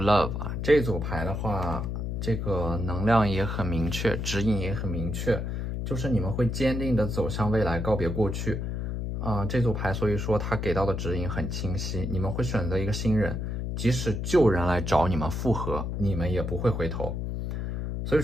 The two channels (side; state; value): left; noise; hum, 3 dB below the sound